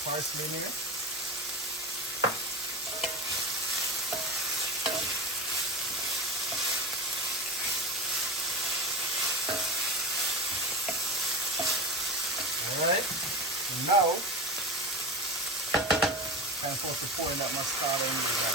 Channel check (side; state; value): both; normal; correlation 0.24